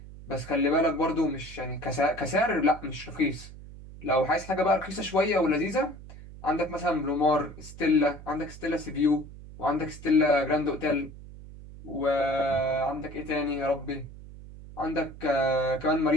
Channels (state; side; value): noise; right; hum, 16 dB below the sound